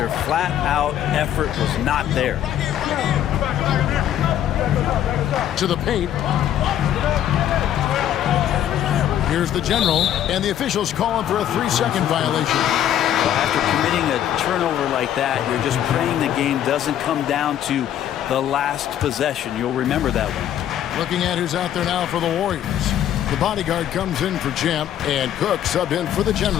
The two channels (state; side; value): quieter; right; 10.9 dB